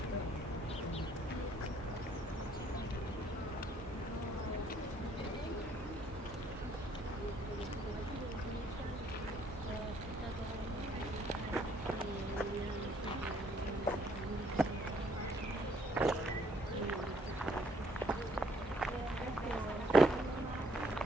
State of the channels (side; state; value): both; normal; correlation 0.65